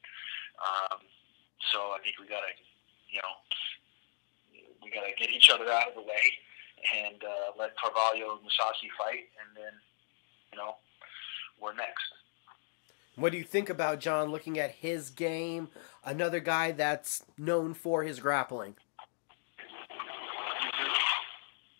So I think we got to get each other out of the way and let Carvalho and Musashi fight, and then, we're next. What do you think about John looking at his game, another guy that's known for his grappling?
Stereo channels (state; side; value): silent; right; digital silence